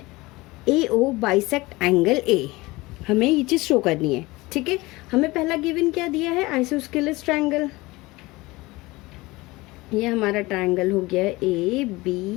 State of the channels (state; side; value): quieter; right; 21.3 dB